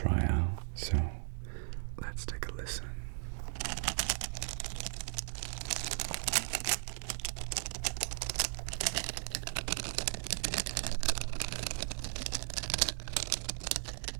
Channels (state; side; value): silent; left; 53 dB below the other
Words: out, so let's take a listen.